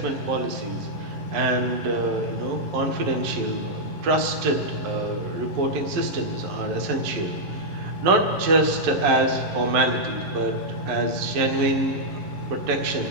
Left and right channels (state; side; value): late; left; 11 ms